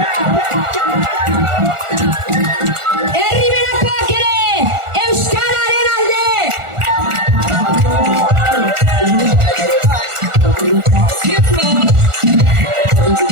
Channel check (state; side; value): late; left; 1.4 ms